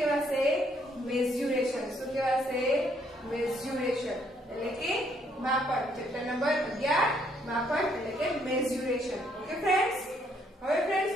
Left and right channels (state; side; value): normal; both; correlation 0.69